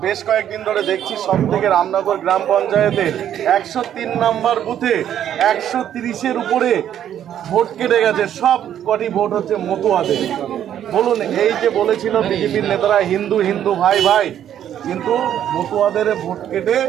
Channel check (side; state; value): left; quieter; 10.4 dB